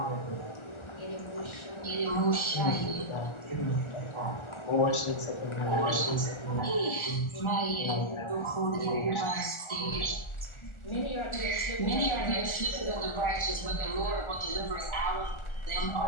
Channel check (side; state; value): right; late; 1.4 ms